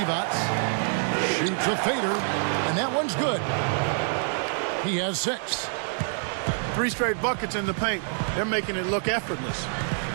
Shoots a fader, and that one's good. He has 6. 3 straight buckets in the paint. They're making it look effortless.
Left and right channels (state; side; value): silent; left; 61 dB below the other